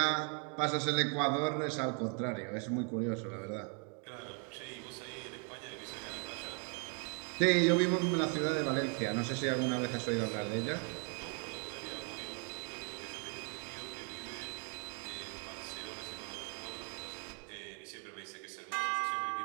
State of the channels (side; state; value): left; quieter; 39.6 dB